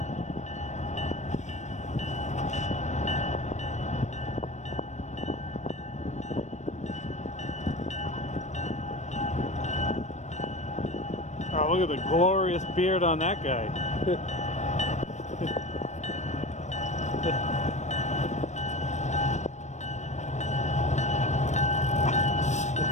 look at the glorious beard on that guy.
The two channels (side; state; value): right; late; 0.34 ms